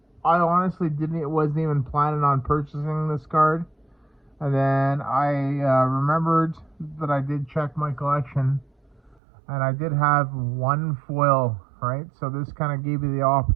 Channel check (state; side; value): drops out; left; at 9.2 s